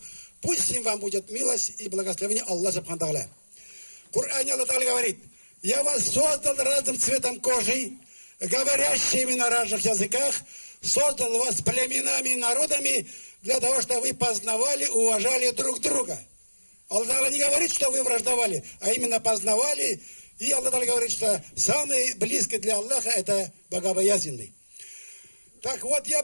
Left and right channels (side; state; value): both; inverted; correlation -1.00